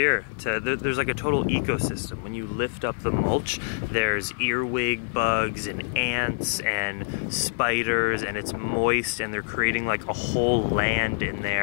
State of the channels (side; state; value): right; silent; 61 dB below the other